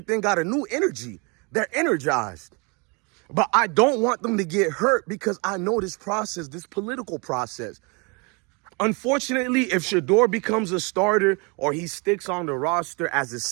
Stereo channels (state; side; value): quieter; left; 31.1 dB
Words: got a new energy. They're energized. But I don't want them to get hurt because I know this process, this political process. Unfortunately, if Shedeur becomes a starter or he sticks on the roster as a